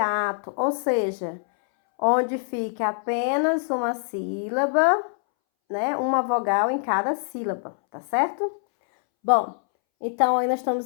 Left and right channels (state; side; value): silent; right; 62 dB below the other